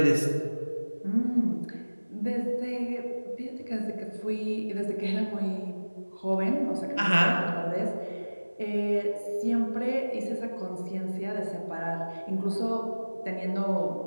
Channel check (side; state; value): both; inverted; correlation -1.00